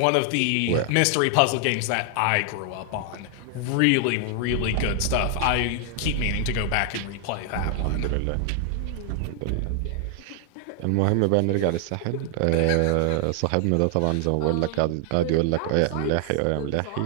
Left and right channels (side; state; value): both; different; correlation 0.00